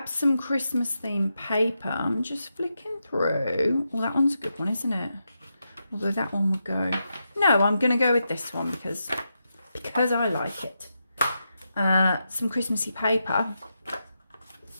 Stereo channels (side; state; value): both; inverted; correlation -0.86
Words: some Christmas themed paper. I'm just flicking through. Well, that one's a good one, isn't it? Although that one would go. No, I'm going to go with this one because I like it. Some Christmassy paper.